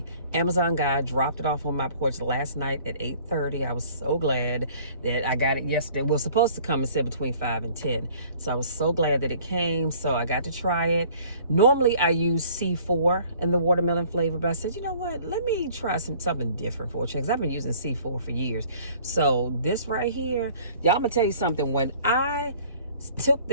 Amazon guy dropped it off on my porch last night at 8:30. I was so glad that I got it yesterday. It was supposed to come and said between 5 and 10. So I was so glad that it came. So I got to try it. Normally I use C4 in the watermelon flavor, but I said, you know what? Let me try something different for a change. I've been using C4 for years. So this right here, y'all, I'm gonna tell you something. When I took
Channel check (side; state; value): both; inverted; correlation -0.53